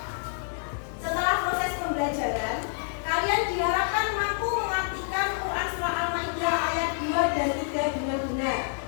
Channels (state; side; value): silent; right; digital silence